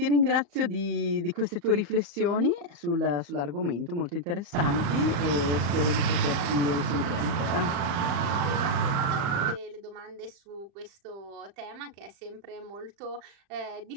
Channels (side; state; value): left; late; 35 ms